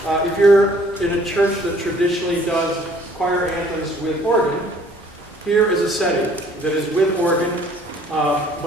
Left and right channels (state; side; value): normal; both; correlation 0.58